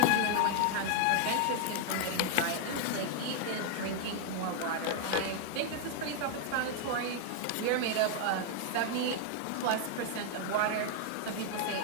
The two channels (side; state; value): both; different; correlation 0.00